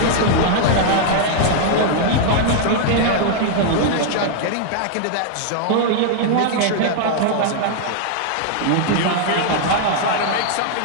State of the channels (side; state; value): both; different; correlation 0.00